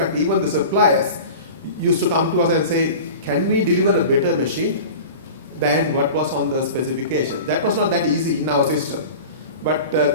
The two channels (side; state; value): both; inverted; correlation -0.36